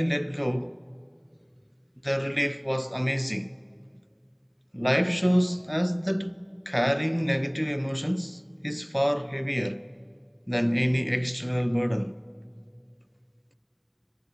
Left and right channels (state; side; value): identical; both; correlation 1.00